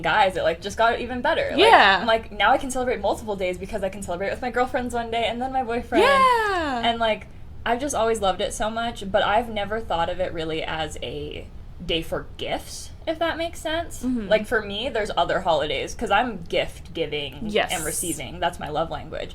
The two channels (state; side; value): identical; both; correlation 1.00